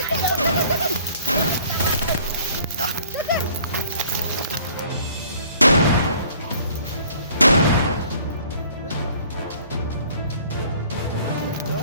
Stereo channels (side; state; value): both; inverted; correlation -0.55